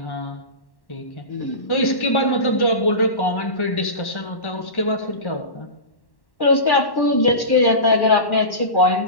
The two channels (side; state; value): right; late; 1.1 ms